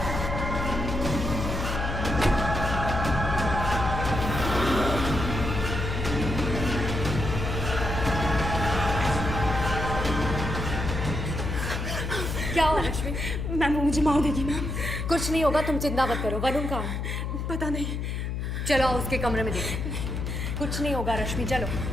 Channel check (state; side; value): noise; left; hum, 3 dB below the sound